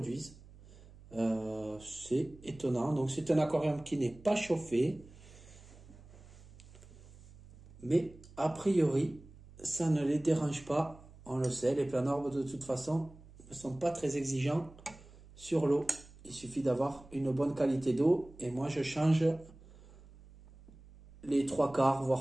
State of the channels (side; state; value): right; noise; hum, 21 dB below the sound